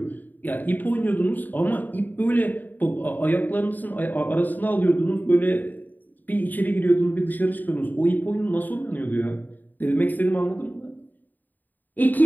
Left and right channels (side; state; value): right; late; 0.087 ms